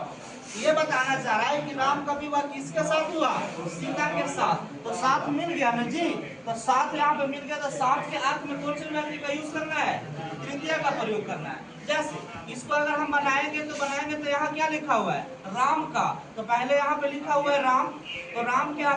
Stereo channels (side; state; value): both; identical; correlation 1.00